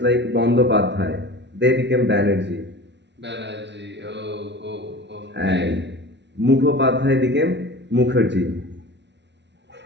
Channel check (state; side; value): late; left; 0.51 ms